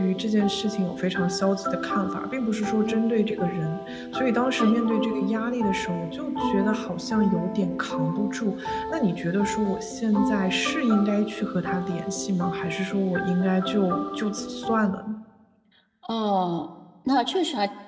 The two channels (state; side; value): identical; both; correlation 1.00